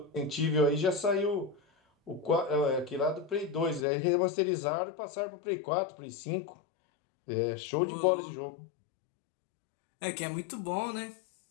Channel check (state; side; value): drops out; right; at 3.9 s